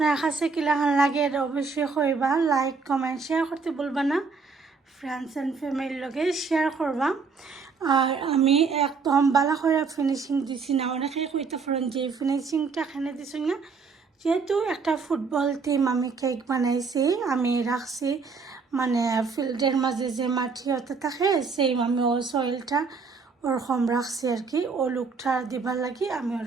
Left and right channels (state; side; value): quieter; left; 4.9 dB